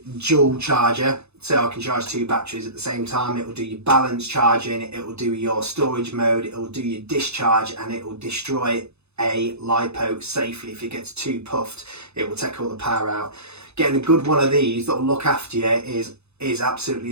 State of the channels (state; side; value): late; left; 0.80 ms